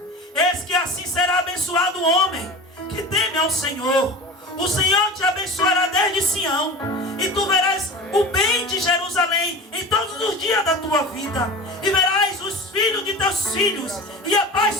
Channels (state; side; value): normal; both; correlation 0.34